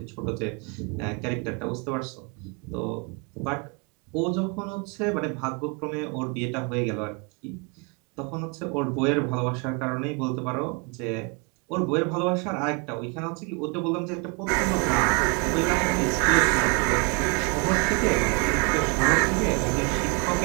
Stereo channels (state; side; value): quieter; left; 33.0 dB